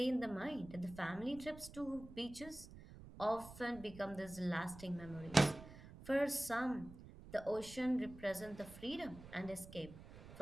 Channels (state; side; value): noise; right; rumble, 16 dB below the sound